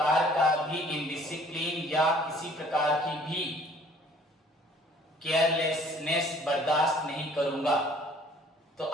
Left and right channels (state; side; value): normal; both; correlation 0.55